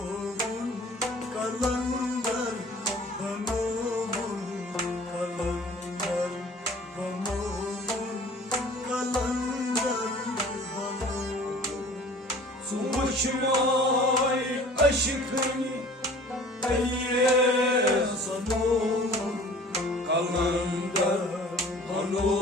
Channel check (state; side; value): normal; both; correlation 0.47